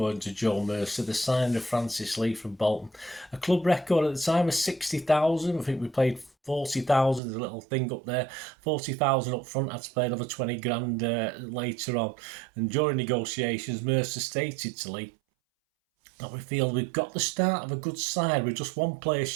to Joe Mercer, the signing of Francis Lee from Bolton. A club record at the time of 60,000. I think we played 40,000. There's a little thing up there. 40,000 up front. Had to pay another 20 grand later on. And during negotiations, Mercer stated to Lee that we feel we've got the start of a good side. We're just 1 player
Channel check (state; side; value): drops out; left; at 7.2 s